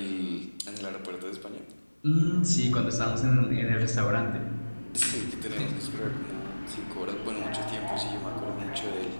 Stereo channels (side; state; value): both; inverted; correlation -1.00